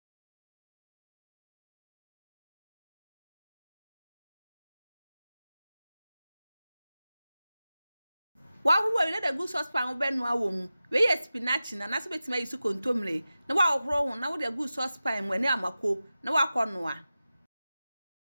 Wa we let the good saucepan be no awom. We Yam Spinach na so betima yisu Kontomire. Na wa ohro ho na wo the good saucepan mu ani amako na wa konoa.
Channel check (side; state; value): both; inverted; correlation -0.94